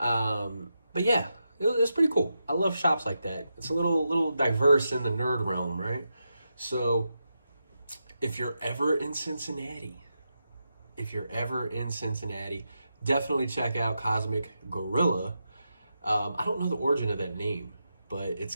yeah, it was pretty cool. I love shops like that. It's a little diverse in the nerd realm, right? So if you're ever in Cincinnati, definitely check out Cosmic Gorilla. I don't know the origin of that name, but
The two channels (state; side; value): inverted; both; correlation -0.87